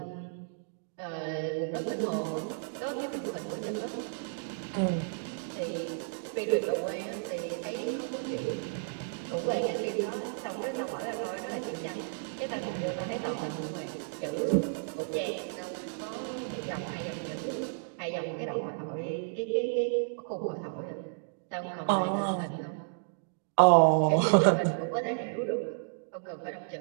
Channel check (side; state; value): left; silent; digital silence